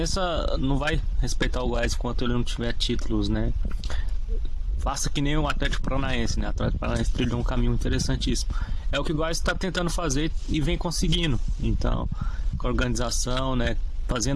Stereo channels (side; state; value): both; identical; correlation 1.00